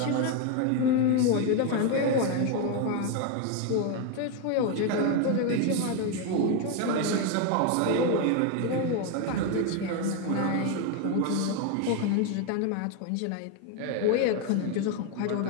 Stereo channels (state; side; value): different; both; correlation 0.02